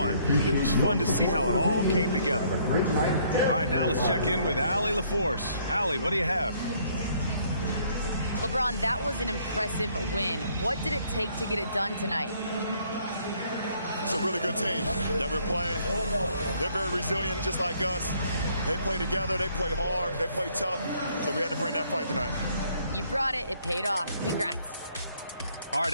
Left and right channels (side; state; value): both; inverted; correlation -0.65